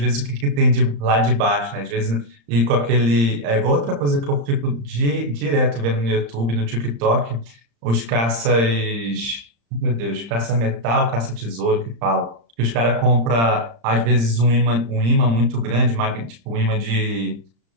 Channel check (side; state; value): left; late; 35 ms